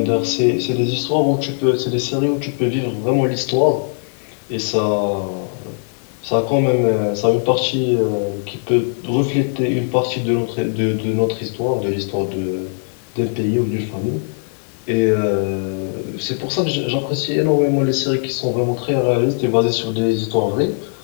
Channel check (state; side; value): silent; right; digital silence